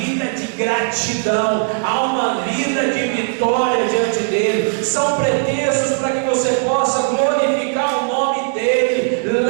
de gratidão, a uma vida de vitória diante dele. São pretextos para que você possa glorificar o nome dele.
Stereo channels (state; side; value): silent; left; 58 dB below the other